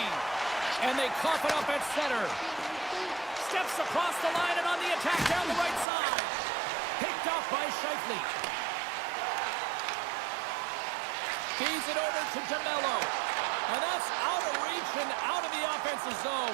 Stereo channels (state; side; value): drops out; left; at 5.9 s